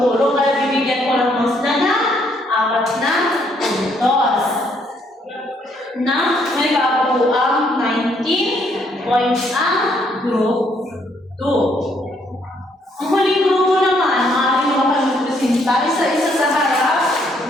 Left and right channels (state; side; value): normal; both; correlation 0.70